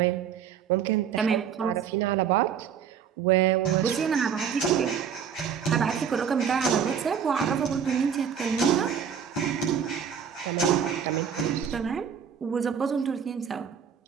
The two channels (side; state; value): left; quieter; 7.7 dB